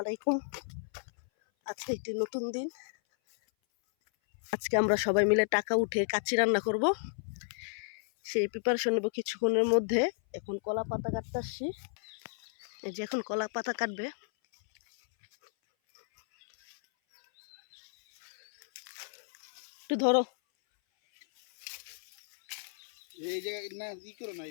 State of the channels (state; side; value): silent; right; 56 dB below the other